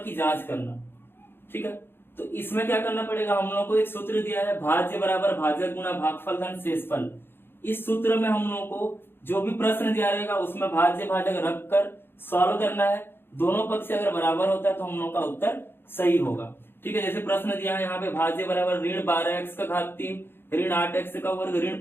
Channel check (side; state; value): right; late; 0.10 ms